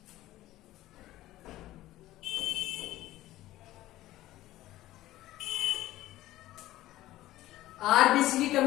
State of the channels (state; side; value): quieter; right; 15.7 dB